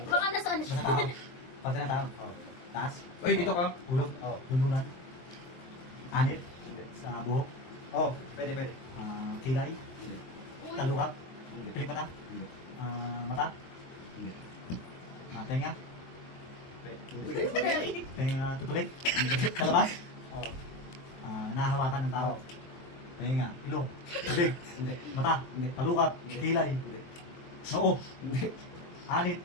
Baka nasaan siya. Basta tao. Pati ng tao. Oo. Taas. Ay, dito ka. Ulog. Oo. Bunduran. Anit. Hindi. Sa buhok. Oo, pwede, pwede. Kilay. Hindi. Talukat. Hindi. Pilik mata. Hindi. Mata. Hindi. Tenga. Pwede. Hindi. Tenga tutulik. Sa labas. Oo. Nahahawakan ng tao. Tenga. Ilong. Bibig. Hindi. Mata. Hindi. Talukat. Hindi. Kilay. Hindi. Noo. Hindi. Anit.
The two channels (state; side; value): late; right; 23 ms